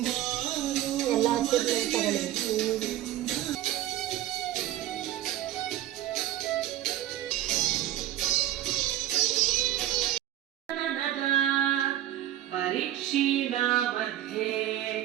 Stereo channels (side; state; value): left; quieter; 13.2 dB